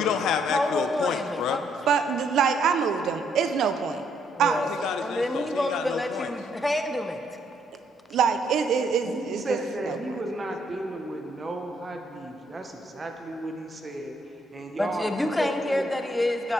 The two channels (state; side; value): normal; both; correlation 0.71